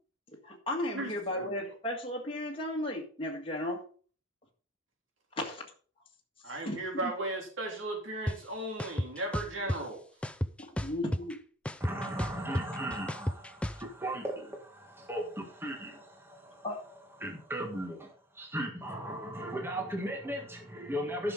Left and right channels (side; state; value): both; normal; correlation 0.47